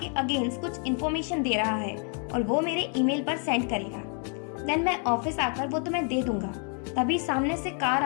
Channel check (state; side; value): quieter; right; 39.9 dB